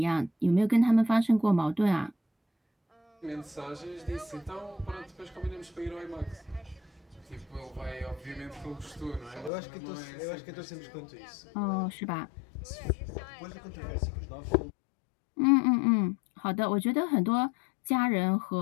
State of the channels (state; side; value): drops out; right; at 9.5 s